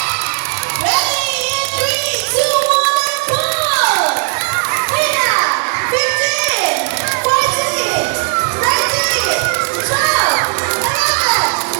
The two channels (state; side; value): silent; left; 64 dB below the other